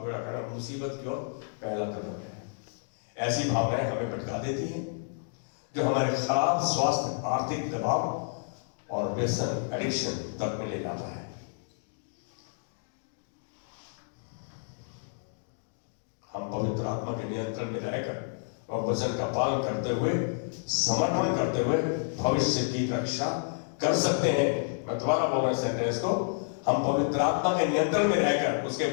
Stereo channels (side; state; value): right; silent; digital silence